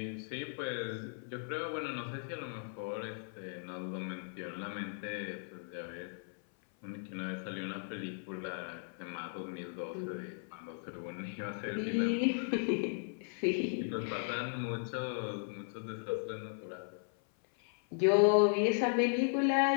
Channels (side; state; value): right; silent; 53 dB below the other